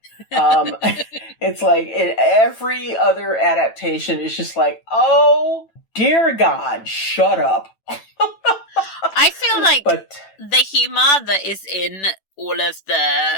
It's like in every other adaptation, it's just like, oh, dear God, shut up. I feel like the humour that is in all of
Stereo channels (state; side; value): late; right; 9.1 ms